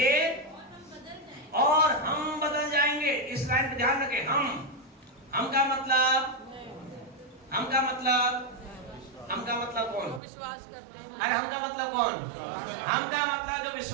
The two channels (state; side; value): drops out; left; at 10.2 s